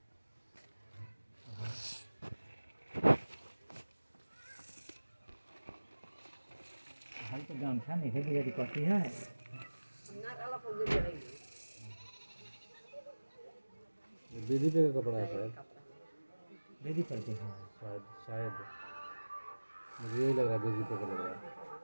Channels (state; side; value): inverted; both; correlation -1.00